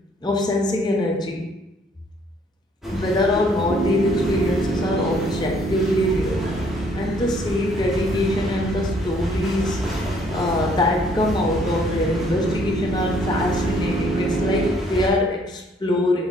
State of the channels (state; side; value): normal; both; correlation 0.64